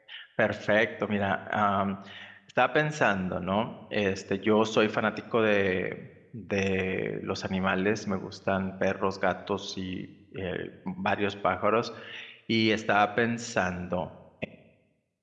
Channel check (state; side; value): identical; both; correlation 1.00